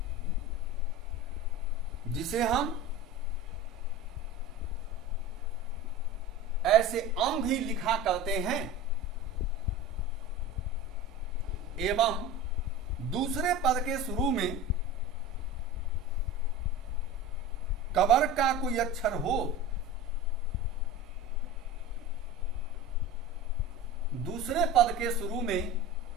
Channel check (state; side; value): normal; both; correlation 0.32